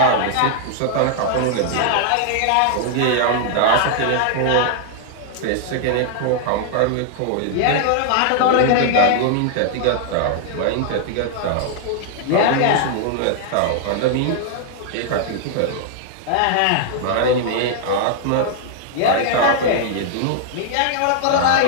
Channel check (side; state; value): both; different; correlation 0.00